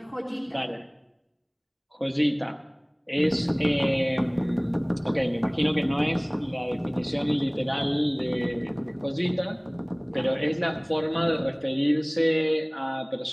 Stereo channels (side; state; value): both; identical; correlation 1.00